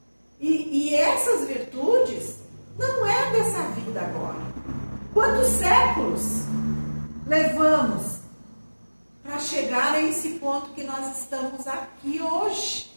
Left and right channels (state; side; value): inverted; both; correlation -1.00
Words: E essas virtudes não é dessa vida agora. Quantos séculos levamos para chegar a esse ponto que nós estamos aqui hoje?